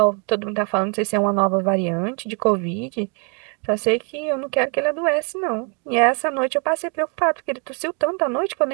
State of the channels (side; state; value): left; quieter; 36.5 dB